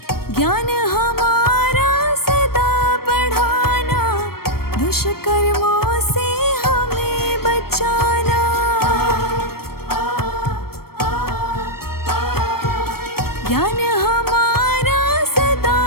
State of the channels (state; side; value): late; right; 0.94 ms